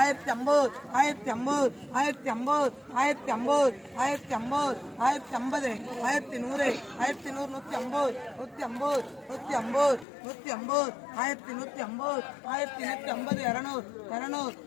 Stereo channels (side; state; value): right; drops out; at 10.1 s